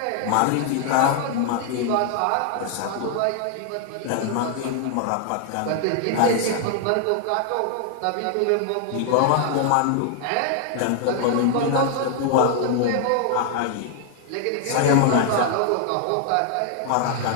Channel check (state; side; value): different; both; correlation 0.00